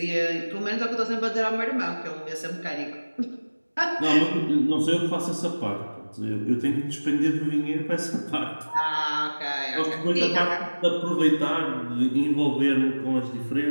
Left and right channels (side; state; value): both; inverted; correlation -1.00